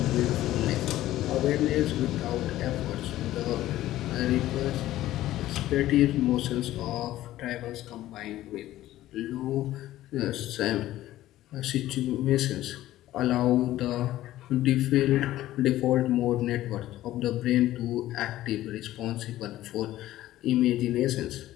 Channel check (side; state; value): right; quieter; 14.7 dB